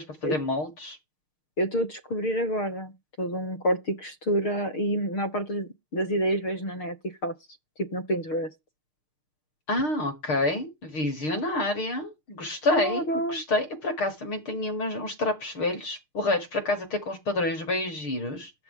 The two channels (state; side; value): late; right; 6.6 ms